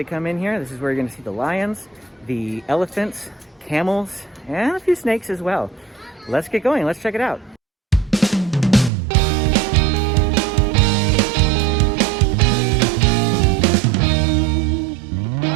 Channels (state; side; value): drops out; left; at 8.9 s